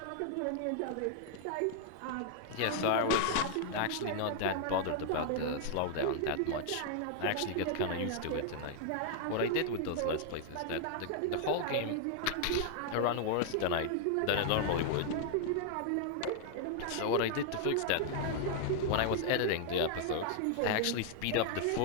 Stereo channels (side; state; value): both; different; correlation 0.00